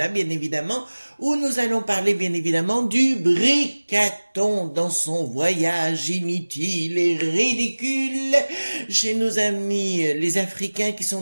bien évidemment, où nous allons parler bien évidemment du Bricaton dans son voyage inutile et ridicule chez nos amis les Africains qui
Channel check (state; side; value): inverted; both; correlation -1.00